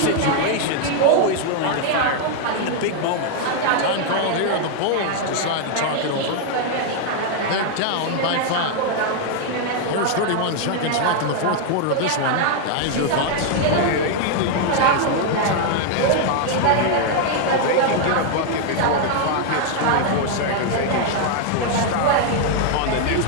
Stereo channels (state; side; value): different; both; correlation 0.00